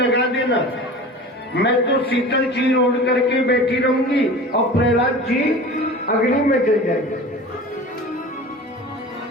देना, मैं तो शीतल चीर ओढ़ करके बैठी रहूंगी और प्रहलाद जी अग्नि में जल जाएंगे।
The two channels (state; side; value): normal; both; correlation 0.36